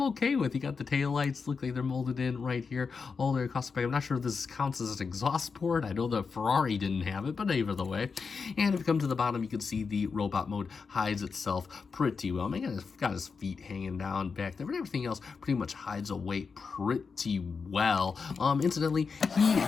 okay with. You got the tail lights, look like they're molded in right here all the way across the back. I'm not sure if this counts as an exhaust port. I know the Ferrari didn't have it, but either the way. And if you come to the bottom, you can see the robot mode hides itself pretty well. I mean, he's got his feet hanging down back there, but everything else pretty much hides away pretty well. Incidentally, he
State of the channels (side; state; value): right; quieter; 5.2 dB